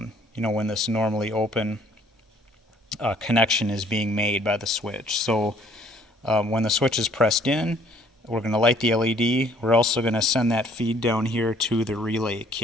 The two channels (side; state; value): both; normal; correlation 0.60